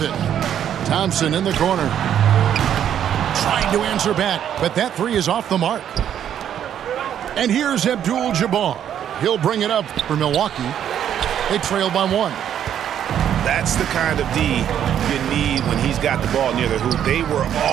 Thompson in the corner. Trying to answer back, but that three is off the mark. And here's Abdul-Jabbar. He'll bring it up for Milwaukee. They trail by one. That's the kind of D you need when he's got the ball near the hoop. They were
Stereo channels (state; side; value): quieter; left; 9.8 dB